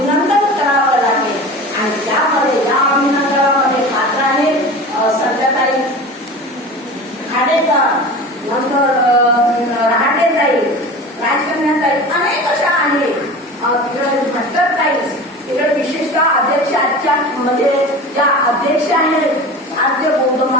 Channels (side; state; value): both; normal; correlation 0.34